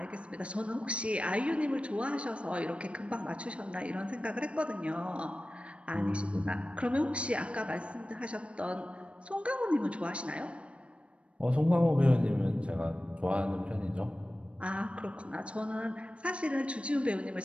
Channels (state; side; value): late; left; 0.060 ms